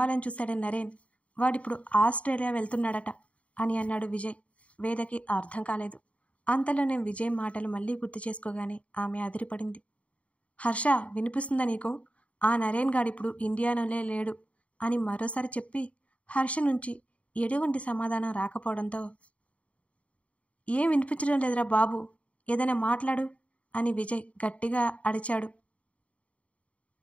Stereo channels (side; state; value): right; late; 0.065 ms